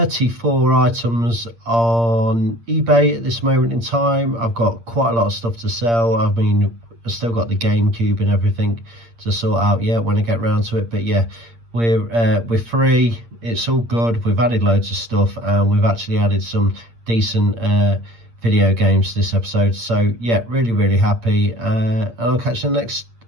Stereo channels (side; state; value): left; late; 8.7 ms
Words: items on eBay at this moment in time. I've got quite a lot of stuff to sell. I mean, I've still got the GameCube and everything to sort out yet when I get round to it. But yeah, we're free. It's all good. We've added loads of stuff, and we've actually added some decent video games to this episode. So yeah, really happy, and I'll catch you in the next